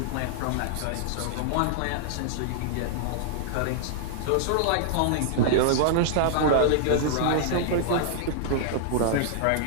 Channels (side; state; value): both; different; correlation -0.01